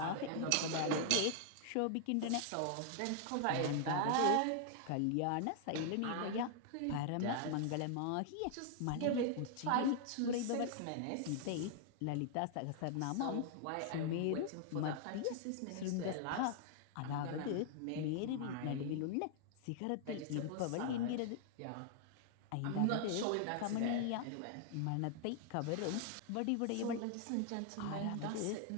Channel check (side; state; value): both; different; correlation 0.00